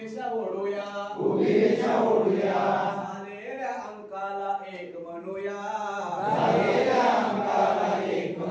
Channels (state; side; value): identical; both; correlation 1.00